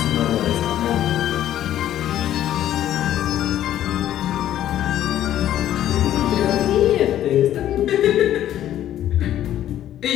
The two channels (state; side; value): quieter; right; 12.0 dB